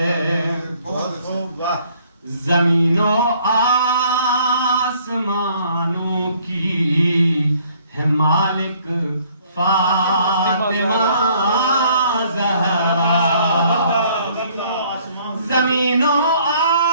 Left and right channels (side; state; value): both; inverted; correlation -0.61